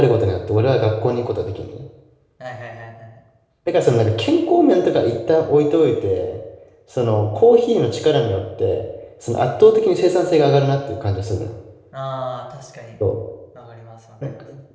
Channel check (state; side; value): identical; both; correlation 1.00